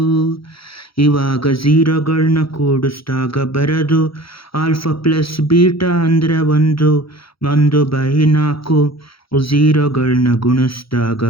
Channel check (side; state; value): right; late; 0.75 ms